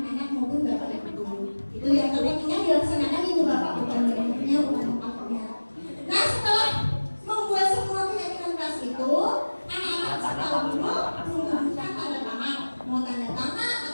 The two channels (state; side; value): inverted; both; correlation -1.00